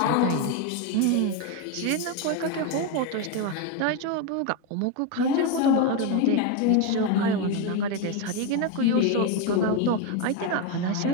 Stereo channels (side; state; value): both; different; correlation 0.02